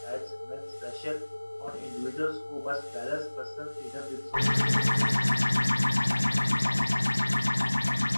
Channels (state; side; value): inverted; both; correlation -1.00